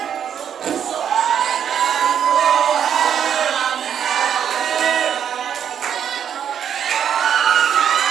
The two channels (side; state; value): left; quieter; 8.7 dB